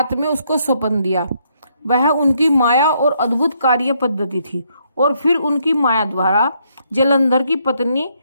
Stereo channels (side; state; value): both; inverted; correlation -0.73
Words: में उसको स्वप्न दिया। वह उनकी माया और अद्भुत कार्य पद्धति थी। और फिर उनकी माया द्वारा जलंधर की पत्नी